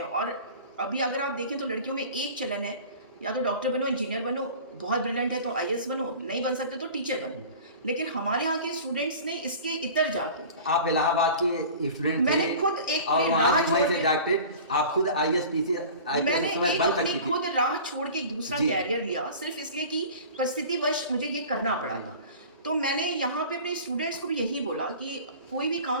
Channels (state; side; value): inverted; both; correlation -0.40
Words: अभी अगर आप देखें तो लड़कियों में एक चलन है, या तो डॉक्टर बनो, इंजीनियर बनो, बहुत ब्रिलियंट है तो आईएएस बनो, नहीं बन सकते तो टीचर बनो। लेकिन हमारे यहाँ के स्टूडेंट्स ने इसके इतर जाके, आप इलाहाबाद के स्टूडेंट मैंने खुद एक राह छोड़ के डॉक्टर, आप खुद आईएएस मैंने अपनी खुद राह छोड़ के एक दूसरा कैरियर लिया, सिर्फ इसलिए कि परिस्थितिवश मुझे ये करना पड़ा था। तो मैंने यहाँ पे अपने स्टूडेंट्स को भी यही बोला कि कोई भी